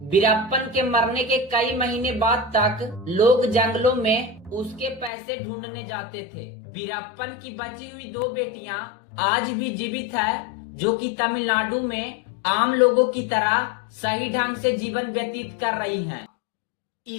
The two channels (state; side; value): drops out; right; at 5.1 s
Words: वीरप्पन के मरने के कई महीने बाद तक लोग जंगलों में उसके पैसे ढूंढने जाते थे। वीरप्पन की बची हुई 2 बेटियां आज भी जीवित है जो कि तमिलनाडु में आम लोगों की तरह सही ढंग से जीवन व्यतीत कर रही हैं।